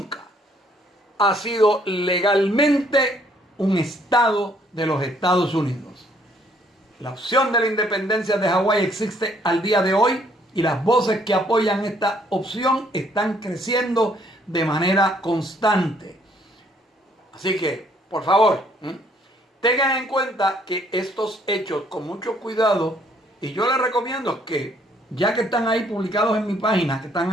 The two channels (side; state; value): both; normal; correlation 0.65